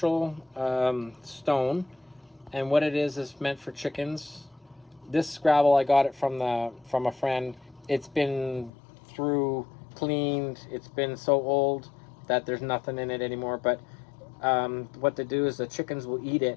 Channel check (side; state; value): right; drops out; at 8.7 s